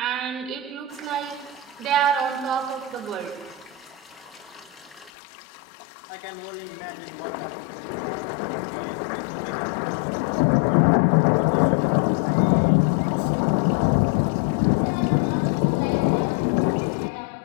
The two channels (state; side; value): drops out; right; at 5.1 s